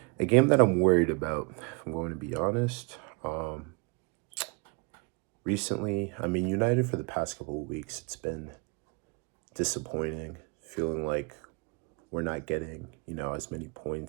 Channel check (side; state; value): left; quieter; 31.5 dB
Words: A game that I'm worried about, if I'm going to be honest. Recently, United for the past couple of weeks, it's been disappointing, feeling like we're not getting, as many